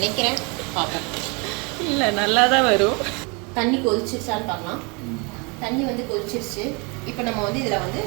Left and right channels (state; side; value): quieter; left; 31.1 dB